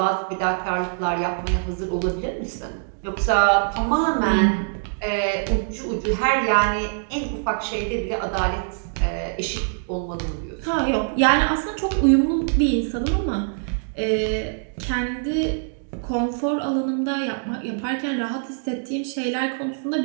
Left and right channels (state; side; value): silent; left; digital silence